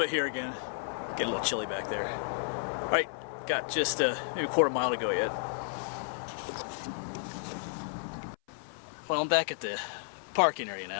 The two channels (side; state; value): right; silent; 56 dB below the other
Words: bit here again. Getting a little chilly back there. Alright, got just maybe a quarter mile to go yet. Well, I'm back at the parking area